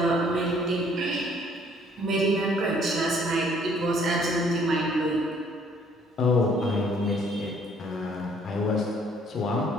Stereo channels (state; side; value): normal; both; correlation 0.61